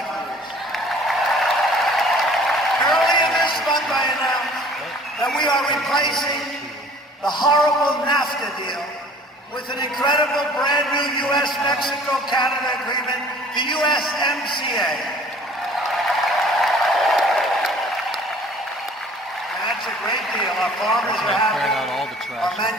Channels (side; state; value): both; normal; correlation 0.51